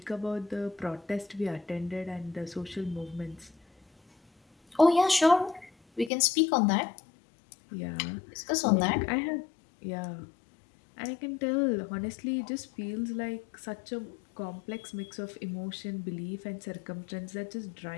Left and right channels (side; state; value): right; drops out; at 6.1 s